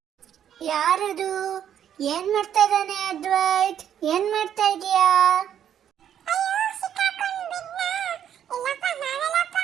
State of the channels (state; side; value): quieter; left; 9.6 dB